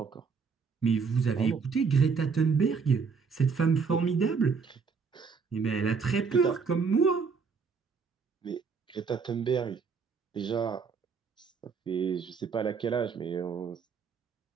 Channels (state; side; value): quieter; left; 5.4 dB